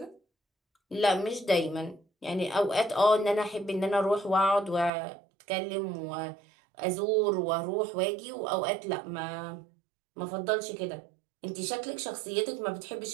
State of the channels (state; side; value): drops out; left; at 4.9 s